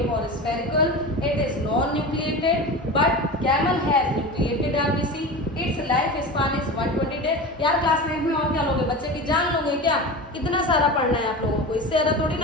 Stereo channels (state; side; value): normal; both; correlation 0.29